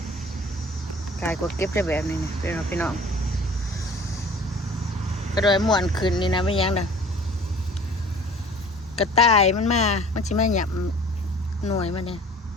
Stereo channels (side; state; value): both; normal; correlation 0.47